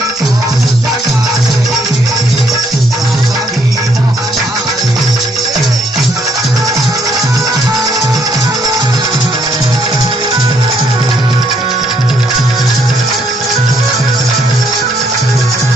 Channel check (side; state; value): both; normal; correlation 0.70